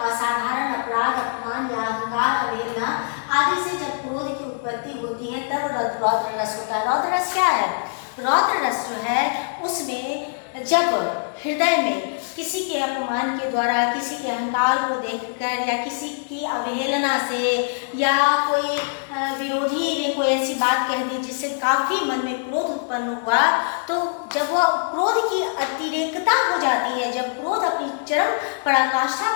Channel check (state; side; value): silent; right; digital silence